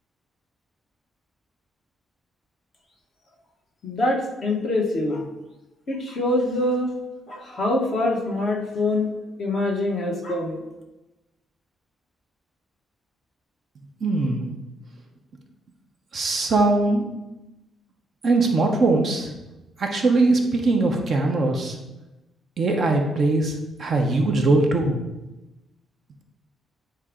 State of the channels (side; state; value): both; normal; correlation 0.71